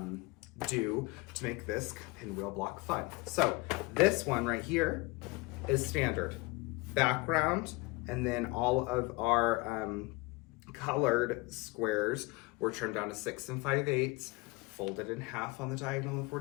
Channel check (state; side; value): quieter; right; 24.1 dB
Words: do to make this pinwheel block fun. So this one right here is standard background, and then all of our colored squares were turned down to 6 5/8, folded in half on the diagonal of